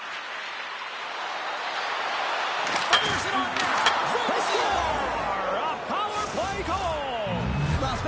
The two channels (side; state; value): both; identical; correlation 1.00